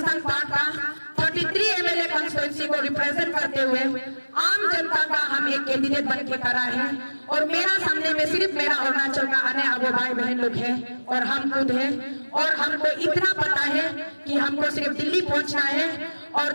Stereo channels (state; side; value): inverted; both; correlation -1.00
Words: पार्ट का 33 MLA कॉन्स्टिट्यूंसी को रिप्रेजेंट करते हुए आम जनता का हम एक कैंडिडेट बन के खड़ा है, और मेरा सामने में सिर्फ मेरा अरुणाचल का आने वाले भाई बहन लोग हैं और हम खुद हैं, और हमको इतना पता है कि हमको सिर्फ दिल्ली पहुंचना है, और